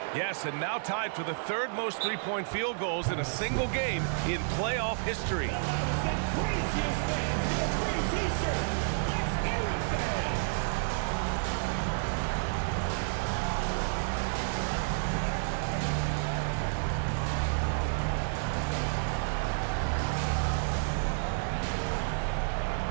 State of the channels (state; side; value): silent; left; 57 dB below the other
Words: Yes, and now tied for the 3rd most three-point field goals in a single game in playoff history.